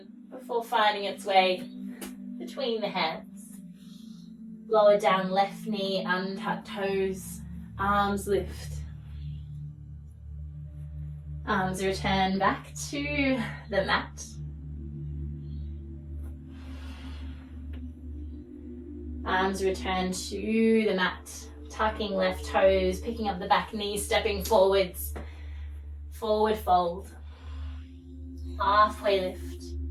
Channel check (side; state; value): both; identical; correlation 1.00